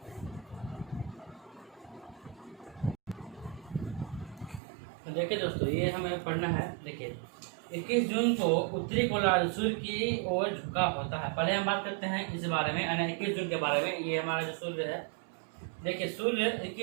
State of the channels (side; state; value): left; drops out; at 4.6 s